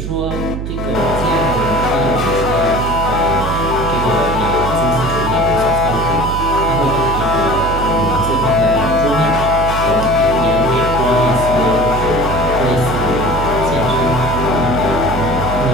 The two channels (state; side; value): noise; right; hum, 6 dB below the sound